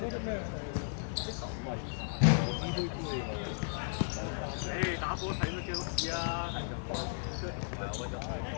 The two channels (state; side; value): silent; right; digital silence